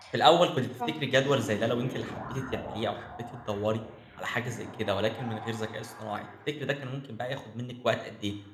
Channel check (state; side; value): identical; both; correlation 1.00